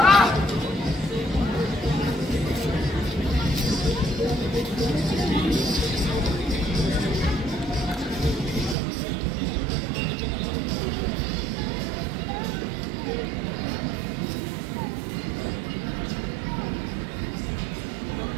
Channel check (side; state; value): left; drops out; at 8.8 s